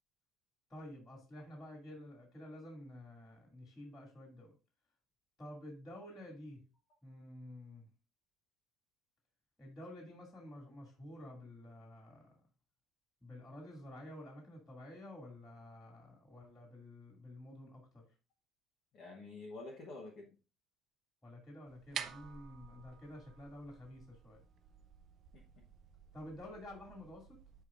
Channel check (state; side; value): normal; both; correlation 0.71